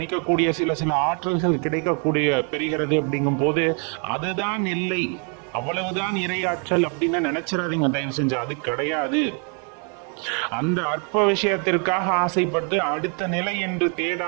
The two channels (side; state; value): left; quieter; 38.8 dB